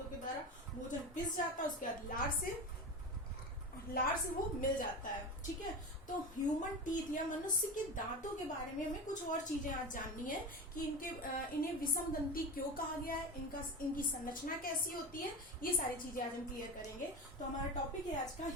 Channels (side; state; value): both; normal; correlation 0.26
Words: के द्वारा भोजन पिस जाता है, उसके बाद लार से वो मिल जाता है। ठीक है, तो ह्यूमन टीथ या मनुष्य के दांतों के बारे में हमें कुछ और चीजें आज जाननी है कि इन्हें विषम दंती क्यों कहा गया है, इनकी संरचना कैसी होती है, ये सारी चीजें आज हम क्लियर करेंगे। तो हमारा टॉपिक है आज का